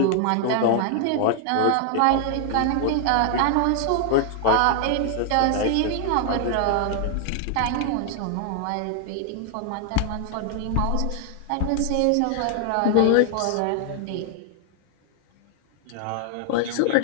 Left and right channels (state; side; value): different; both; correlation 0.00